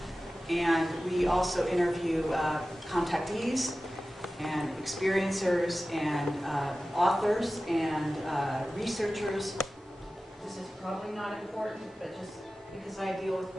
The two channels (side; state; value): both; normal; correlation 0.95